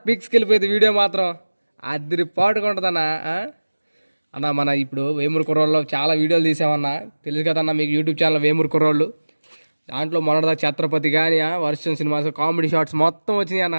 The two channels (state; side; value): inverted; both; correlation -1.00